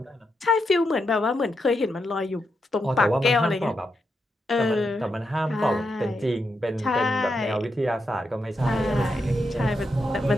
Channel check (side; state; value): both; normal; correlation 0.83